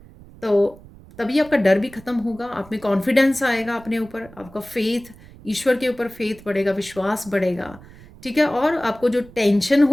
तो तभी आपका डर भी खत्म होगा, आप में कॉन्फिडेंस आएगा अपने ऊपर, आपका फेथ, ईश्वर के ऊपर फेथ बढ़ेगा, विश्वास बढ़ेगा। ठीक है, और आपको जो टेंशन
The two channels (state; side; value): noise; right; rumble, 21 dB below the sound